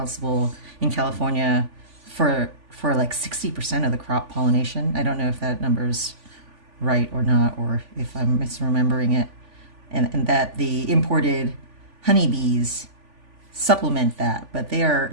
in California for like 60% of the crop pollination. I don't know if that number's right or not, or if I'm misremembering it. And that the imported honeybees supplement that, but they are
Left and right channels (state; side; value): late; left; 3.5 ms